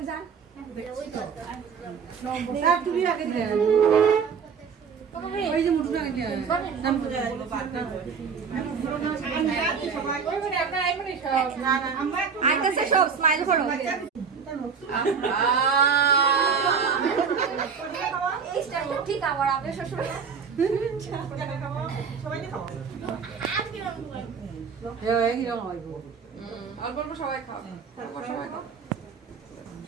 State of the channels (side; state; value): left; quieter; 6.2 dB